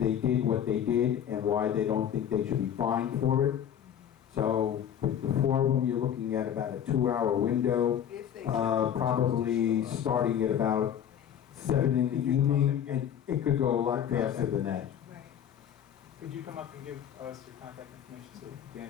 did what they did and why they don't think they should be fined for it. So with the 4 of them, you're looking at about a 2-hour window, probably starting at about 7 in the evening, and it could go a lot faster than that. Could you come up and give us your contact information so Dan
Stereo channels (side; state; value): right; quieter; 9.4 dB